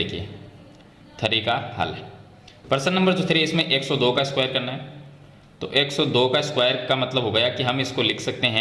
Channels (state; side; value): identical; both; correlation 1.00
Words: 3 का हल है। प्रश्न नंबर जो 3 इसमें 102 का स्क्वायर करना है। तो 102 का स्क्वायर का मतलब हो गया कि हम इसको लिख सकते